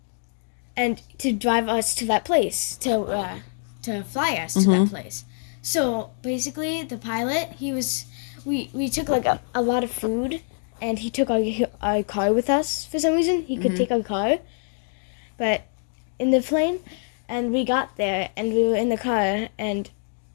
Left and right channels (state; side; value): silent; right; 59 dB below the other